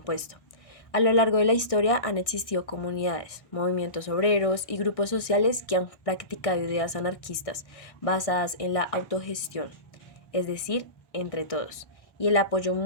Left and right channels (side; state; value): right; late; 1.6 ms